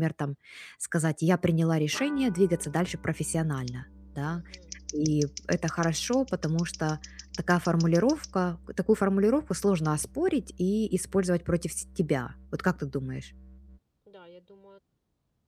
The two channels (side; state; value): both; identical; correlation 1.00